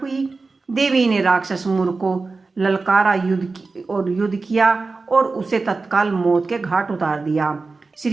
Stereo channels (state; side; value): quieter; left; 3.9 dB